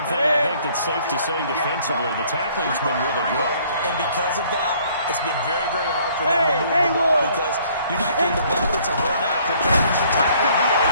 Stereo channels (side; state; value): both; inverted; correlation -0.60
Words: thing I think that's safe to say defensively, the tackling's been really good. And because of that, it's been very, very hard for them to move the ball because you're not getting the benefits of run after catch. You're tackling